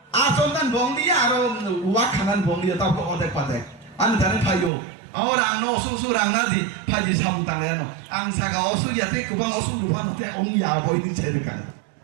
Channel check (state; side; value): drops out; left; at 4.7 s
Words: asonan bom lia atau wakanan bom lia tahu ke odek padek anu dari payo orang no susu orang nasi paji samutang ya no angsa kau osu ya tu kubang osu lupa nanti ong ya boy ini cerikan